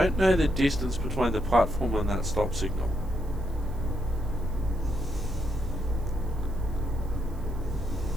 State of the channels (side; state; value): right; noise; hiss, 27 dB below the sound